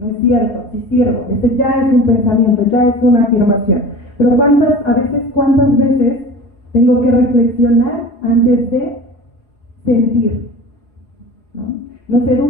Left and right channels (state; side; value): late; right; 4.9 ms